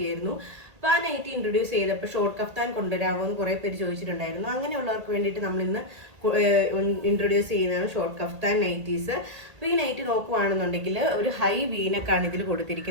ആയിരുന്നു. അപ്പൊ ആ നൈറ്റി ഇൻട്രൊഡ്യൂസ് ചെയ്തപ്പോൾ ഷോർട്ട് കഫ്താൻ കൊണ്ടുവരാമോ എന്ന് കുറെ പേര് ചോദിച്ചിട്ടുണ്ടായിരുന്നു. അങ്ങനെയുള്ളവർക്ക് വേണ്ടിയിട്ട് നമ്മൾ ഇന്ന് ഇൻട്രൊഡ്യൂസ് ചെയ്യുന്നതാണ് ഷോർട്ട് കഫ്താൻ നൈറ്റീസ്. അപ്പൊ ഈ നൈറ്റി നോക്കുവാണെന്നുണ്ടെങ്കിൽ ഒരു ഹൈ വീനക്കാണ് ഇതിൽ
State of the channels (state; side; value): late; left; 1.8 ms